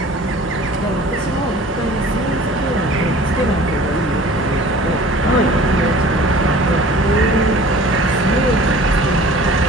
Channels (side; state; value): both; normal; correlation 0.46